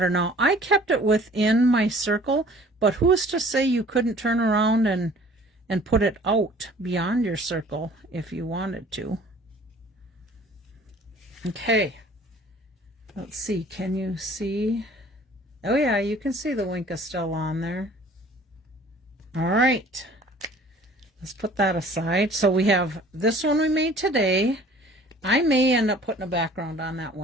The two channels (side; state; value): both; normal; correlation 0.51